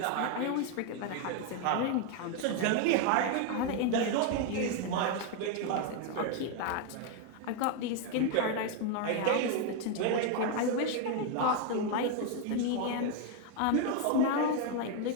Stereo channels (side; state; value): both; different; correlation 0.01